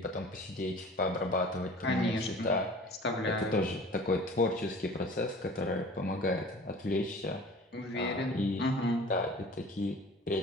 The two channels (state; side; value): normal; both; correlation 0.44